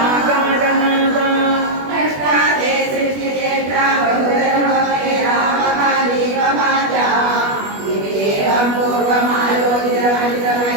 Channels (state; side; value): late; left; 21 ms